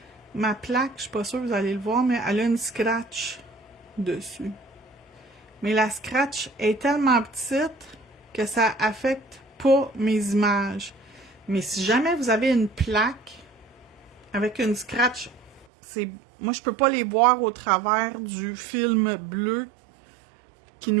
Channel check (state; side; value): drops out; left; at 15.7 s